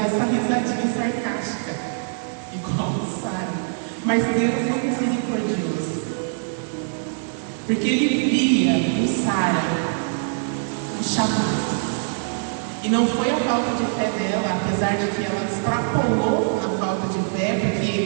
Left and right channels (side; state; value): left; silent; 62 dB below the other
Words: essa risadinha sarcástica, igual Sara. Mas Deus é misericordioso. Porque Ele via em Sara um chamado. E não foi a falta de fé dela, apesar de que ela extrapolou na falta de fé,